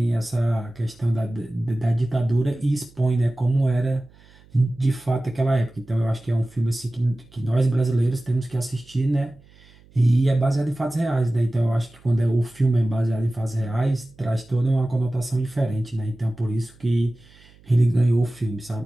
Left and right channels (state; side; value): noise; right; hum, 27 dB below the sound